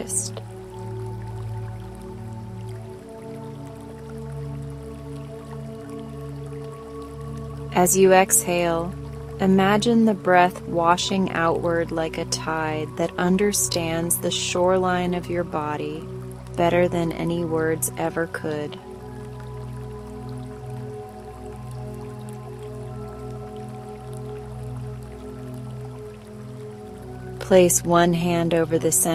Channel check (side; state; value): both; identical; correlation 1.00